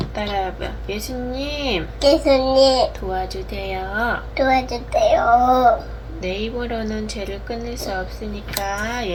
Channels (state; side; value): identical; both; correlation 1.00